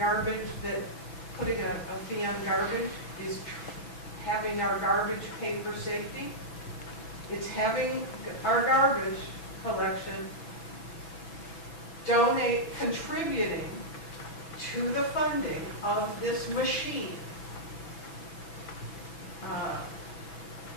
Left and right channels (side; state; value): right; late; 6.1 ms